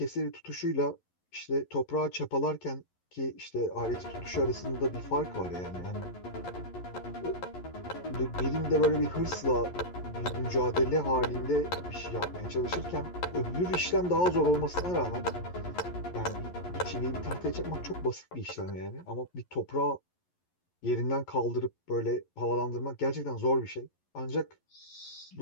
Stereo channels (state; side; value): late; right; 11 ms